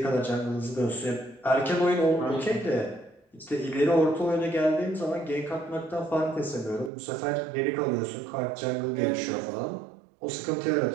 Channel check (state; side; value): drops out; left; at 6.9 s